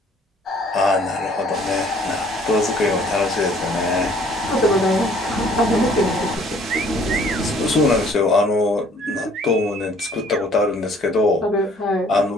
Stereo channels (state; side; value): normal; both; correlation 0.58